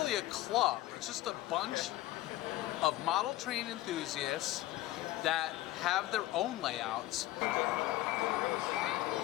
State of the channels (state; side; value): quieter; right; 16.1 dB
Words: a club. It's just a bunch of model train enthusiasts that have their own layouts.